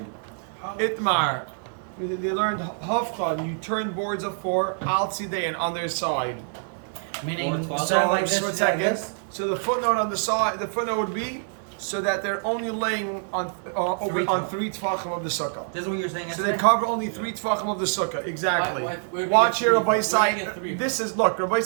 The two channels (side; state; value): left; silent; 61 dB below the other